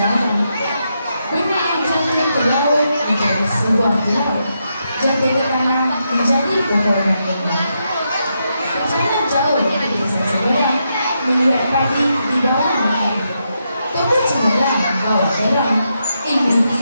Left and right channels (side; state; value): both; inverted; correlation -0.82